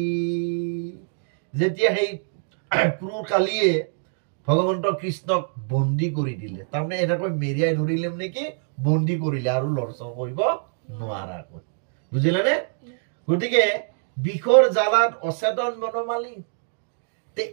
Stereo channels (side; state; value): left; silent; digital silence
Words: যেতিয়া সেই ক্ৰূৰ কালীয়ে ভগৱন্ত কৃষ্ণক বন্দী কৰি দিলে তাৰমানে এনেকৈ মেৰিয়াই ধৰিলে মানে কি বন্দী কৰিলে আৰু লৰচৰ কৰিব নোৱাৰাকৈ বুজিলানে গতিকে বিষৰ জালাত অচেতন বনমালী তে